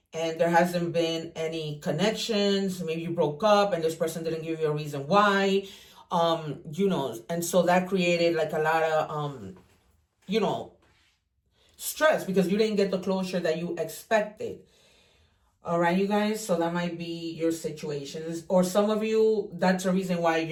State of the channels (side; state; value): both; identical; correlation 1.00